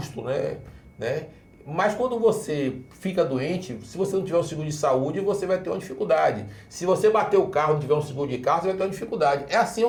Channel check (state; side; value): identical; both; correlation 1.00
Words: né? Mas quando você fica doente, se você não tiver um seguro de saúde, você vai ter uma dificuldade. Se você bater o carro e não tiver um seguro de carro, você vai ter uma dificuldade. É assim